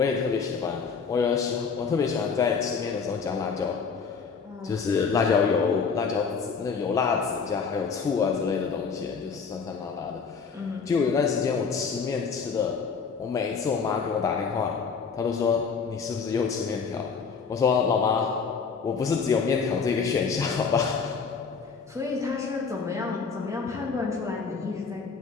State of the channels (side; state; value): right; quieter; 5.6 dB